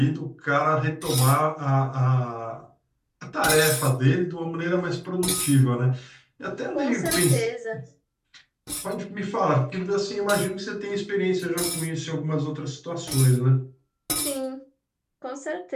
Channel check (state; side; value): identical; both; correlation 1.00